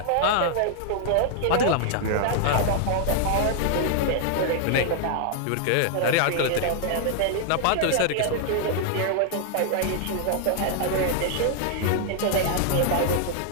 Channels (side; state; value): both; different; correlation -0.01